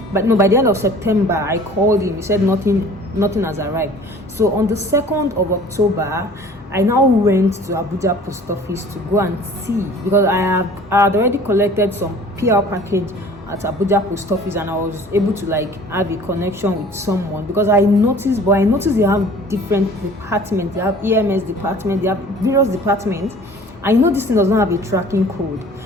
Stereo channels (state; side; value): normal; both; correlation 0.48